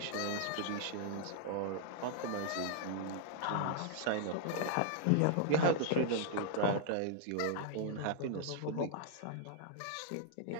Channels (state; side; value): different; both; correlation -0.01